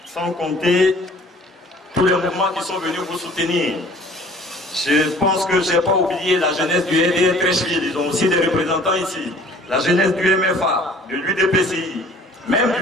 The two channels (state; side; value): normal; both; correlation 0.51